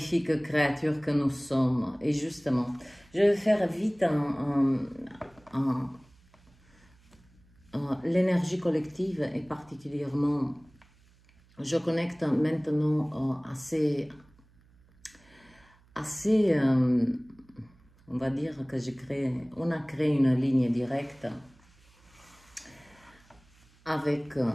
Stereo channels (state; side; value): noise; right; hum, 30 dB below the sound